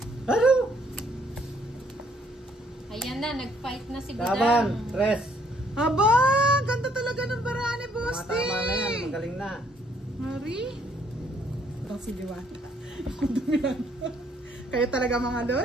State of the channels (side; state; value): both; normal; correlation 0.66